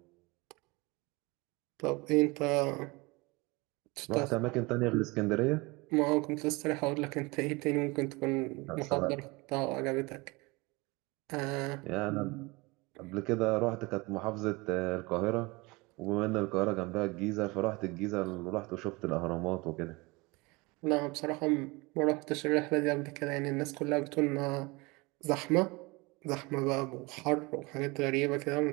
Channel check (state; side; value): quieter; left; 25.1 dB